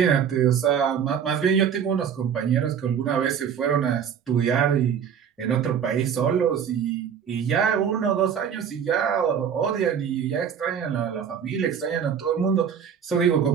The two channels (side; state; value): left; quieter; 7.8 dB